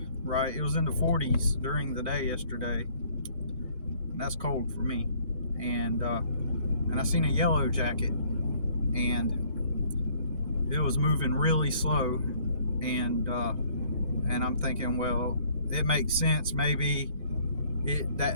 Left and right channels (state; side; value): inverted; both; correlation -0.60